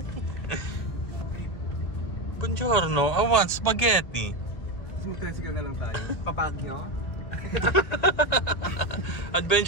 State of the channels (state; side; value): late; right; 2.2 ms